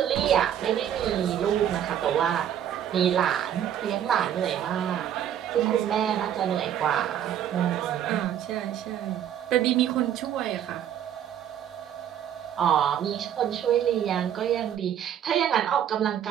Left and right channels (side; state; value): left; quieter; 10.0 dB